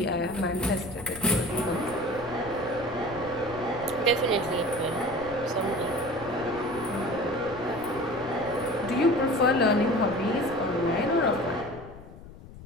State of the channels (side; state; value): left; noise; rumble, 17 dB below the sound